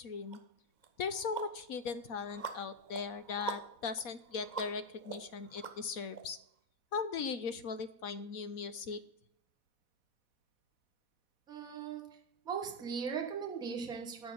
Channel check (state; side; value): late; right; 4.1 ms